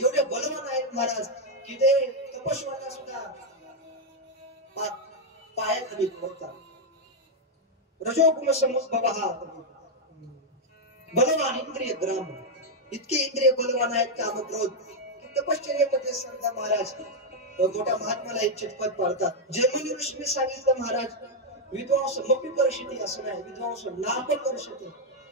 बलवान आहेत महाराज की ते तपस्वांना सुद्धा पायाखाली ठेवतात. रजोगुण समुद्भवः बलवान इंद्रिय ग्राम. इतके इंद्रिय बलवान आहेत कामक्रोध. तपश्चर्येमध्ये संत महाराज मोठ्या महात्माला इच्छित पद पाडतात. जैमिनी ऋषीने सांगितलं महाराज विद्वांस मपी कर्षति असं नाही, विद्वांस नाप कर्षति.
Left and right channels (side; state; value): both; normal; correlation 0.00